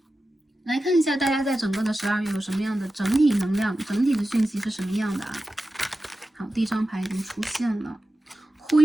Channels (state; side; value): normal; both; correlation 0.93